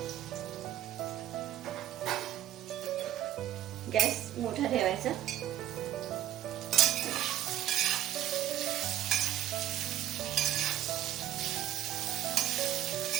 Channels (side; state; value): left; quieter; 12.7 dB